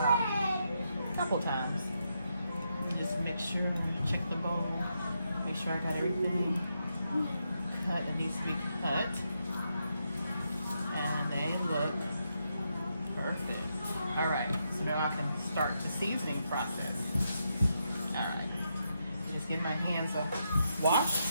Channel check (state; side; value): inverted; both; correlation -0.82